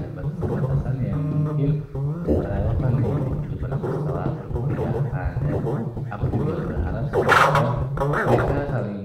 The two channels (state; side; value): identical; both; correlation 1.00